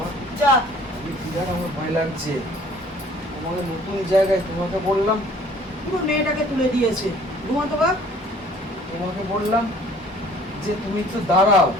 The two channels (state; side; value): normal; both; correlation 0.54